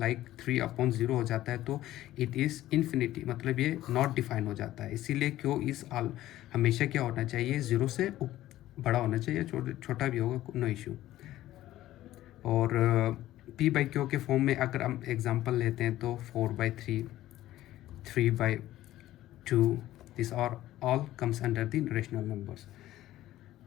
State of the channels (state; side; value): quieter; right; 14.5 dB